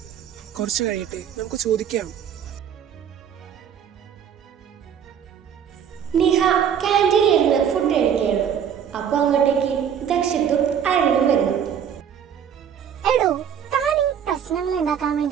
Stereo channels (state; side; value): quieter; left; 8.4 dB